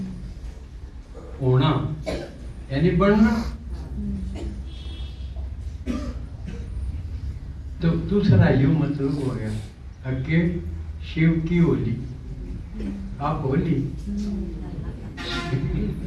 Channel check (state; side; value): identical; both; correlation 1.00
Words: होना यानी बनना। तो दूसरा यू मतलब हो गया अके शिव की होली, आप होली